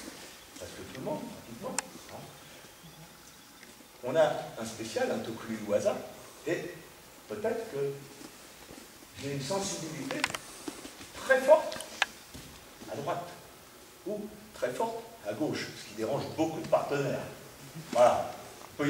parce que tout le monde, pratiquement, hein, on a un spécial, un Tokuri Waza, et peut-être que j'ai une sensibilité très forte à droite, ou très forte à gauche, ce qui dérange beaucoup de partenaires. Voilà. Il peut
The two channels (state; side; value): identical; both; correlation 1.00